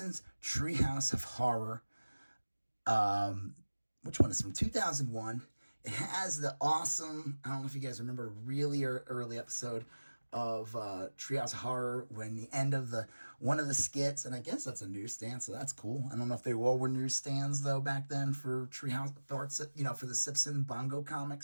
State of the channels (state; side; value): inverted; both; correlation -1.00